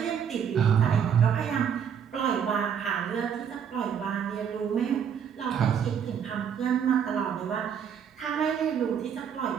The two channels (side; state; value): left; quieter; 7.9 dB